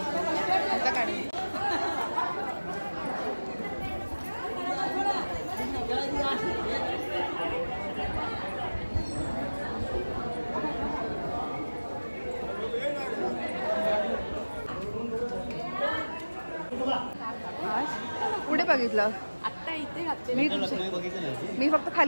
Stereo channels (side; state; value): both; inverted; correlation -1.00